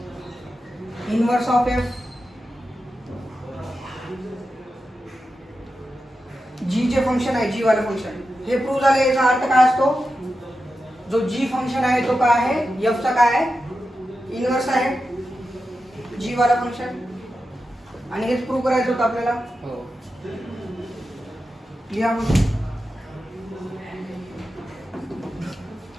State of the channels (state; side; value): normal; both; correlation 0.90